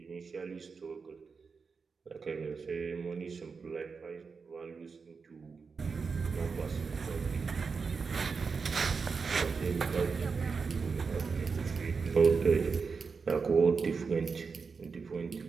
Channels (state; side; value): quieter; left; 5.1 dB